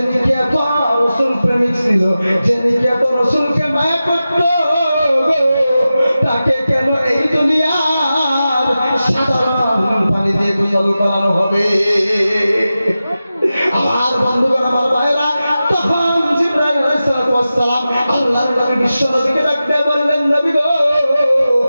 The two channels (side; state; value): both; inverted; correlation -0.93